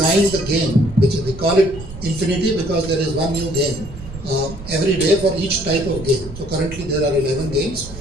the game, which we call it infinity because there is one new game every day for each type of game. So currently there are 11 games.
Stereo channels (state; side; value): noise; right; rumble, 13 dB below the sound